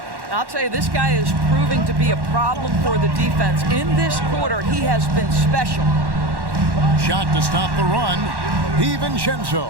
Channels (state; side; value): late; left; 1.1 ms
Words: I'll tell you, this guy is proving to be a problem for the defense. In this quarter, he has been special. Shot to stop the run. DiVincenzo